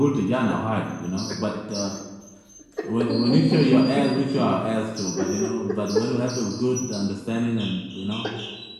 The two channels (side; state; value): both; identical; correlation 1.00